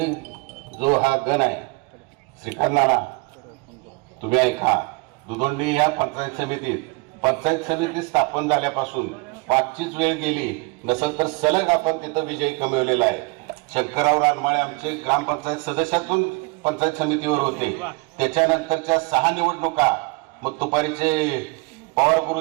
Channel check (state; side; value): quieter; left; 27.2 dB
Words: जो हा गण आहे, श्रीकांत नाना, तुम्ही ऐका, दुदोंडी या पंचायत समिती स्थापन झाल्यापासून 5चीच वेळ गेली नसेल तर सलग आपण तिथं विजय कमवलेला आहे। शंकरराव रानमाळे आमचे ग्रामपंचायत सदस्यातून पंचायत समितीवर होते, त्याच्यानंतरच्या 6 निवडणुका मग तुपारीचे पवार